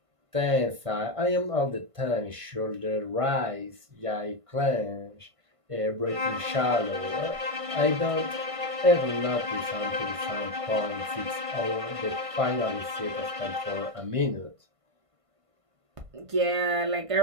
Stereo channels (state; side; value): late; left; 1.5 ms